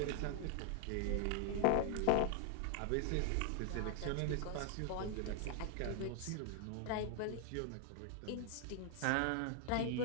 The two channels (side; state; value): both; different; correlation 0.00